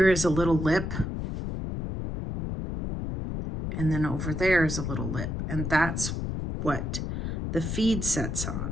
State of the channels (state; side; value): noise; left; rumble, 4 dB below the sound